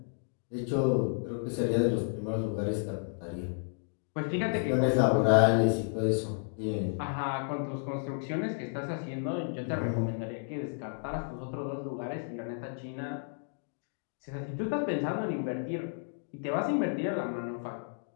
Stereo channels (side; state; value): right; silent; digital silence